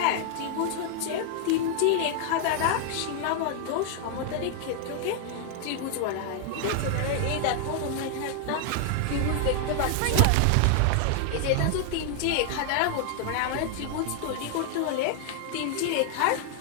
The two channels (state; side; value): different; both; correlation 0.00